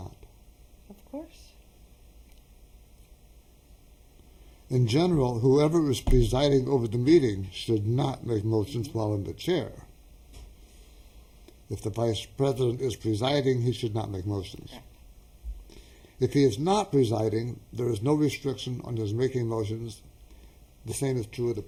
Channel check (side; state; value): both; identical; correlation 1.00